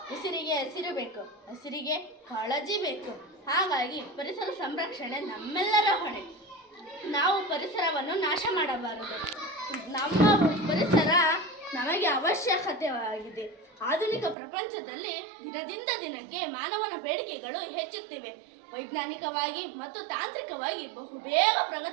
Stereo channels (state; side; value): drops out; left; at 14.4 s